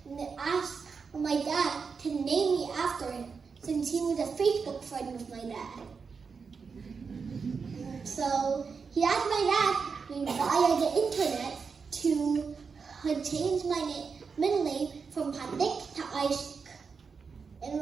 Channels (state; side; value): quieter; left; 5.4 dB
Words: to ask my dad to name me after him, since he was a Facebook friend of my dad. So he asked my dad via the internet to change my middle name from Panik to Isaac. and